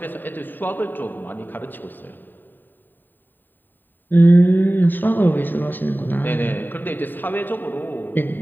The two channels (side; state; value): right; late; 0.091 ms